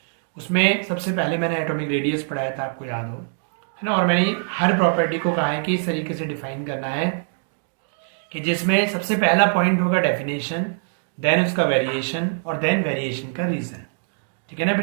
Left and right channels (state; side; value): silent; left; 63 dB below the other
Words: उसमें सबसे पहले मैंने एटॉमिक रेडियस पढ़ाया था, आपको याद हो, है ना? और मैंने हर प्रॉपर्टी को कहा है कि इस तरीके से डिफाइन करना है कि जिसमें सबसे पहला पॉइंट होगा डेफिनेशन, देन उसका वेरिएशन और देन वेरिएशन का रीज़न। ठीक है ना